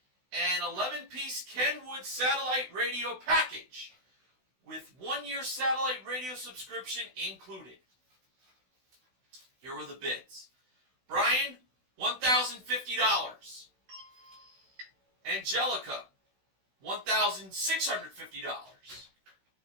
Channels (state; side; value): late; left; 16 ms